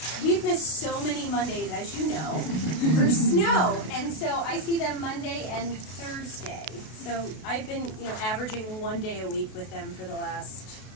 We've missed so many Mondays, as you know, for snow, and so I see them Monday and Thursday. So I've been, averaging one day a week with them for the last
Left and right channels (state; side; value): late; right; 33 ms